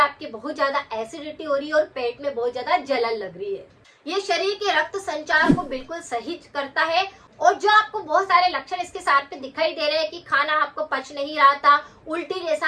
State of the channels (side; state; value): both; identical; correlation 1.00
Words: बहुत ज्यादा एसिडिटी हो रही है और पेट में बहुत ज्यादा जलन लग रही है। ये शरीर के रक्त संचार को बिल्कुल सही करता है। और जो आपको बहुत सारे लक्षण इसके साथ में दिखाई दे रहे हैं कि खाना आपको पच नहीं रहा था, उल्टी